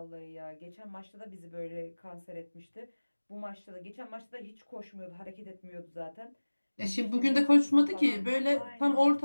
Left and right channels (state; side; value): inverted; both; correlation -1.00